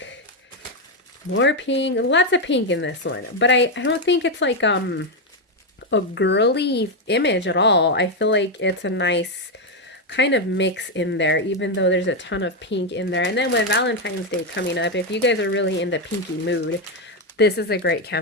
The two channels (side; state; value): both; normal; correlation 0.05